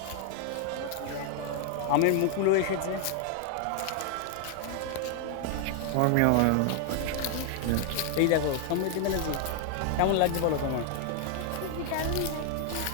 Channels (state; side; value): different; both; correlation 0.00